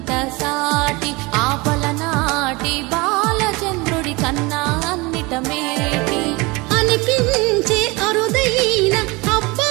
సాటి ఆపలనాటి బాలచంద్రుడి కన్నా అన్నిట మేటి అనిపించే అరుదైన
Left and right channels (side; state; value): left; quieter; 24.9 dB